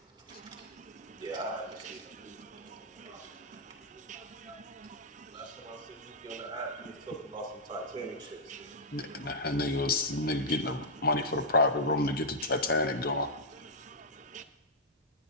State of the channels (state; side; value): normal; both; correlation -0.08